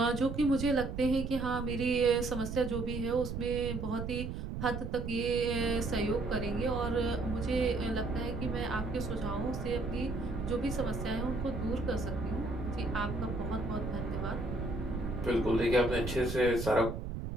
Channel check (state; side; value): noise; right; rumble, 5 dB below the sound